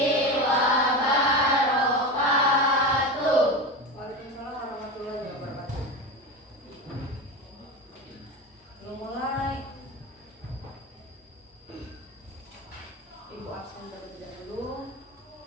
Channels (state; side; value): normal; both; correlation 0.23